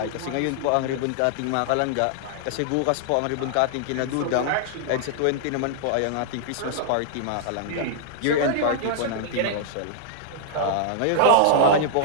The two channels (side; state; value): both; different; correlation -0.01